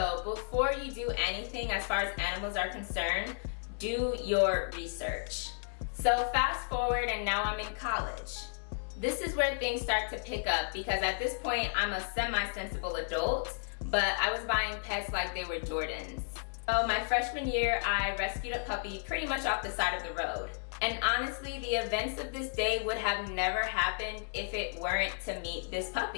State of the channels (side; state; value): right; silent; 56 dB below the other